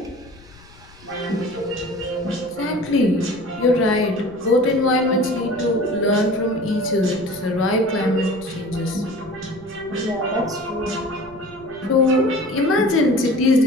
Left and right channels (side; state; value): left; noise; rumble, 24 dB below the sound